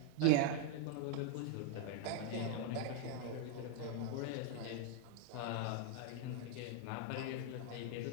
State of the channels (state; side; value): different; both; correlation 0.01